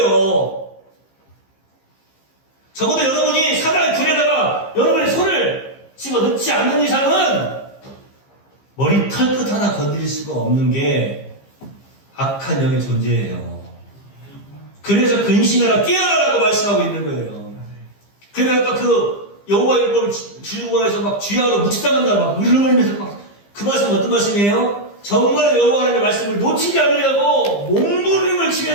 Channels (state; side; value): late; right; 15 ms